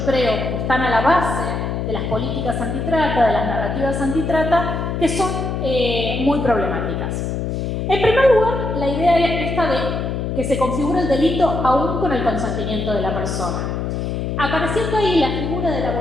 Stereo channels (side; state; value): left; noise; hum, 2 dB below the sound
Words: creo que están a la base de las políticas antitrata, de las narrativas antitrata, que son muy problemáticas. En primer lugar, la idea esta de que se configura el delito aún con el consentimiento de la persona. Apareciendo ahí la figura de la